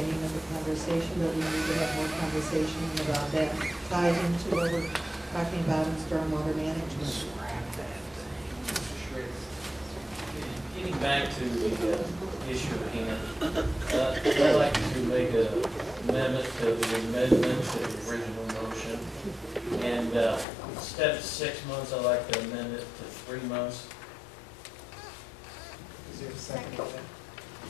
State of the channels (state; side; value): drops out; right; at 20.5 s